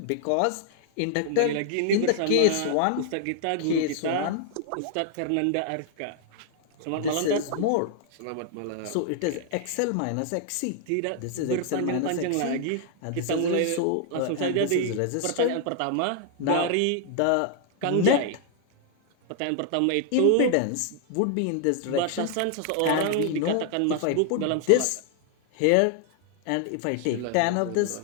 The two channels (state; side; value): different; both; correlation 0.00